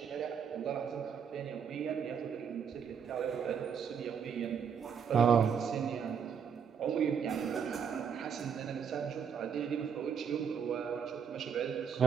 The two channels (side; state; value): left; quieter; 7.3 dB